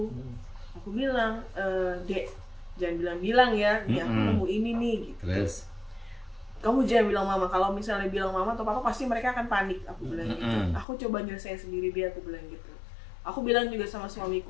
Aku bilang, Dek, jangan bilang-bilang ya, nih aku nemu ini nih gitu. Terus? Kamu jangan bilang mama, kalau misalnya bilang mama atau papa pasti mereka akan panik, aku bilang gitu. Aku coba nyelesain sendiri dia, aku bilang gitu. Aku bilang juga sama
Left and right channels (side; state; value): right; drops out; at 10.9 s